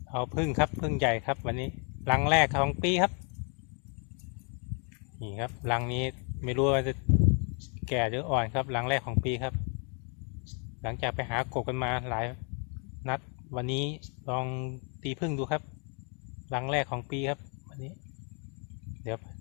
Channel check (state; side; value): quieter; right; 39.5 dB